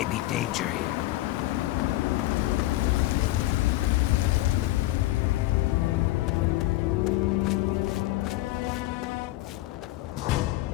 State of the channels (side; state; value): right; quieter; 17.4 dB